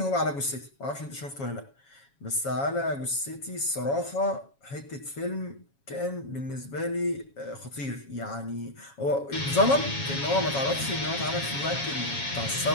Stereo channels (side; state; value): right; late; 7.2 ms